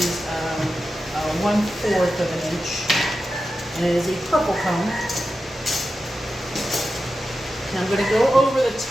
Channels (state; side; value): normal; both; correlation 0.91